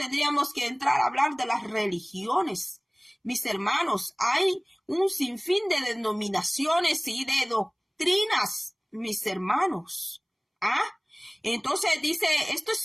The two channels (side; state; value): both; identical; correlation 1.00